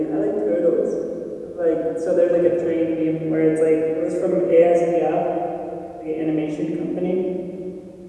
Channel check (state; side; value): identical; both; correlation 1.00